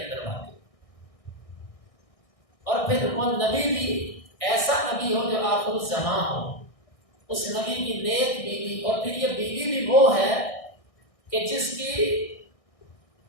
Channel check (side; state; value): right; late; 1.6 ms